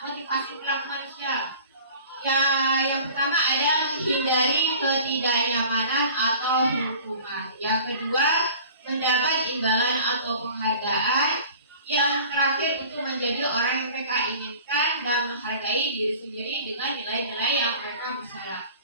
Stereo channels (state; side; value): inverted; both; correlation -0.44